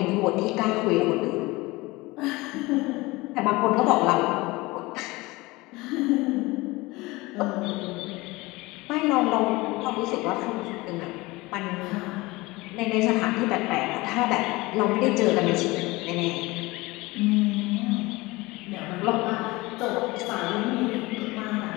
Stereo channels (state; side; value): quieter; right; 21.9 dB